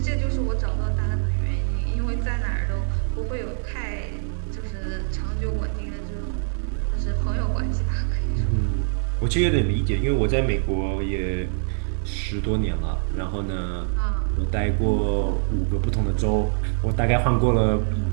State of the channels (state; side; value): silent; left; digital silence